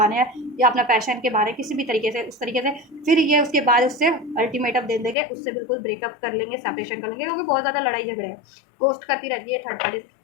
या अपना पैशन के बहाने, किसी भी तरीके से, उस तरीके से फिर ये उसके बाद उससे अल्टीमेटम दे देंगे, उससे बिल्कुल ब्रेकअप कर लेंगे, सेपरेशन कर लेंगे, क्योंकि बहुत ज़्यादा लड़ाई झगड़े हैं, गोस्ट करती रहती है थर्ड पार्टी,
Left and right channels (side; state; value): right; drops out; at 5.2 s